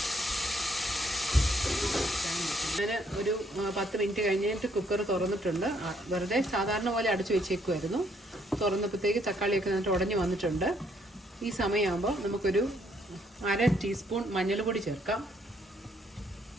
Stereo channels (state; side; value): normal; both; correlation 0.69